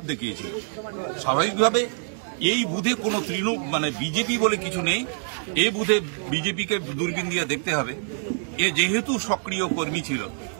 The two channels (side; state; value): left; silent; digital silence